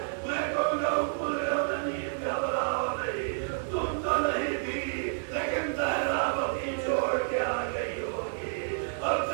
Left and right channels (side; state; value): left; silent; digital silence